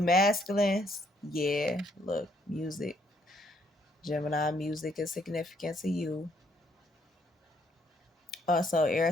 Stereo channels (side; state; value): both; normal; correlation 0.69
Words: masculines, yeah, look, music. Gemini music is significant to you. Also,